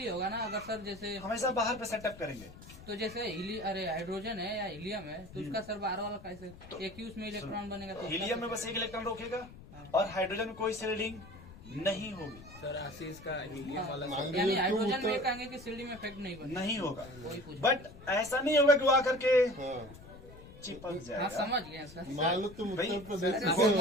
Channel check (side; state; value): left; noise; rumble, 18 dB below the sound